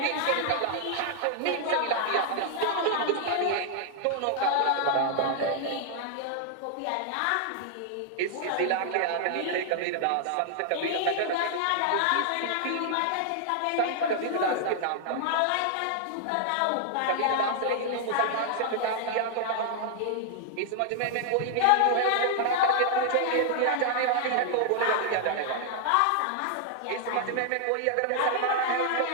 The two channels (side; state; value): both; different; correlation 0.00